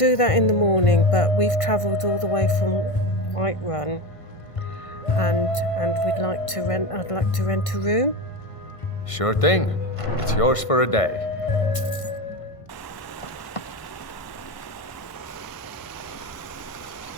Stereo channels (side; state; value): right; late; 1.5 ms